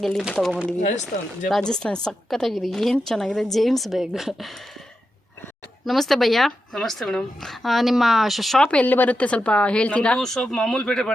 ಎಲ್ಲಿಂದ ತೊಗೊಂಬಂದಿದ್ದೀವಿ? ರಾಜಸ್ಥಾನ. ಸಖತ್ತಾಗಿದೆ, ಏನು ಚೆನ್ನಾಗಿದೆ. James bag. ನಮಸ್ತೆ ಭಯ್ಯ. ನಮಸ್ತೆ ಮೇಡಮ್. ನಿಮ್ಮ ಶಾಪ್ ಎಲ್ಲಿ ಬರುತ್ತೆ ಸ್ವಲ್ಪ ಹೇಳ್ತೀರಾ? ಶಾಪ್ ಮಾಮೂಲ್ ಪೇಟೆ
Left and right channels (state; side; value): normal; both; correlation 0.88